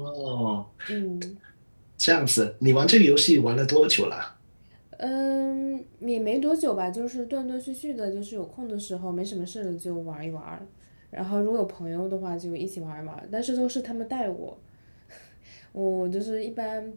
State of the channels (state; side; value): inverted; both; correlation -1.00